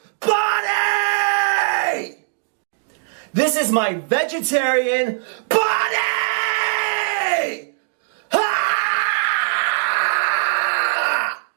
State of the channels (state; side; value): silent; left; 65 dB below the other